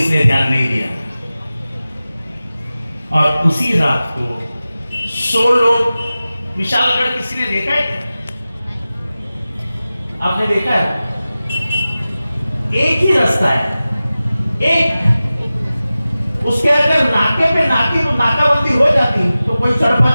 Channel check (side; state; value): both; inverted; correlation -0.96